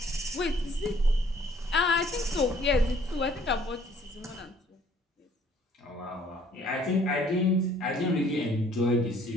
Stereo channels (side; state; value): both; normal; correlation 0.59